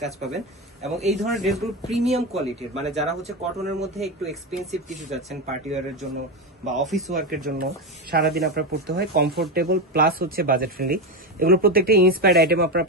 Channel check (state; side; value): normal; both; correlation 0.14